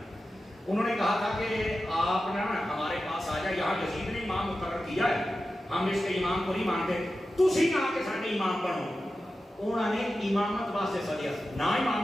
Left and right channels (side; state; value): both; normal; correlation 0.93